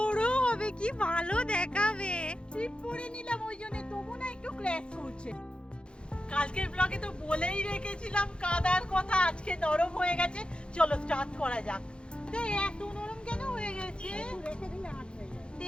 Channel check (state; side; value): late; right; 0.054 ms